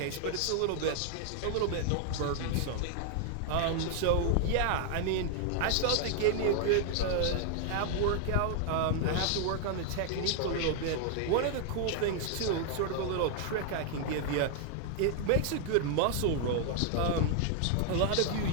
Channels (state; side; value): different; both; correlation 0.00